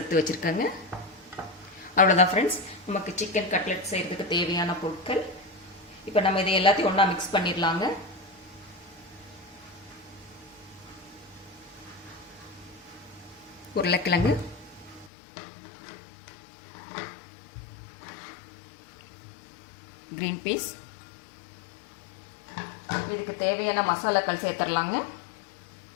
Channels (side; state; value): right; drops out; at 15.1 s